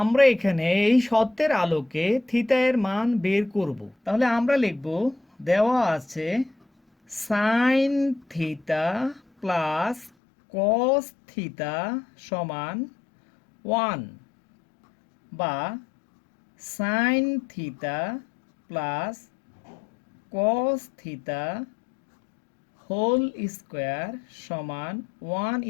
এখানে এই সত্যের আলোকে থিটা এর মান বের করব। তাহলে আমরা লিখব, দেওয়া আছে sine theta plus cos theta সমান 1 বা sine theta plus cos theta whole square সমান 1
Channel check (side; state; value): right; drops out; at 10.1 s